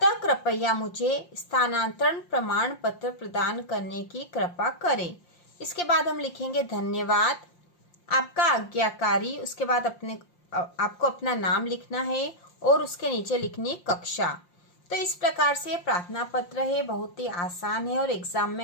कृपया मुझे स्थानांतरण प्रमाण पत्र प्रदान करने की कृपा करें। इसके बाद हम लिखेंगे धन्यवाद, आपका आज्ञाकारी। उसके बाद आपको अपना नाम लिखना है और उसके नीचे लिखनी कक्षा। तो इस प्रकार से प्रार्थना पत्र है, बहुत ही आसान है और एग्जाम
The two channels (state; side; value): late; right; 5.7 ms